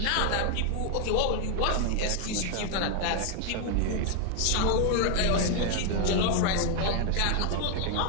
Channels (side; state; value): both; different; correlation 0.00